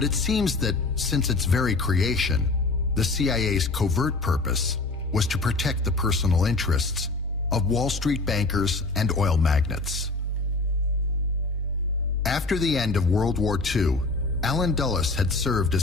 it seems that since its very creation, the CIA's covert purpose was to protect the personal interests of Wall Street bankers and oil magnates. After the end of World War II, Allen Dulles had served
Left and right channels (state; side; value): quieter; right; 3.5 dB